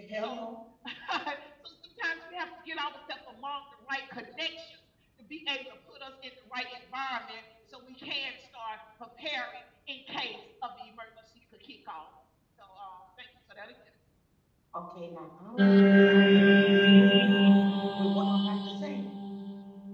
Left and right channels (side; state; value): both; identical; correlation 1.00